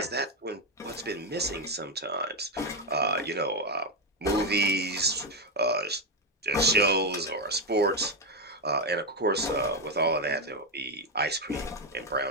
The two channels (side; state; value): both; normal; correlation 0.07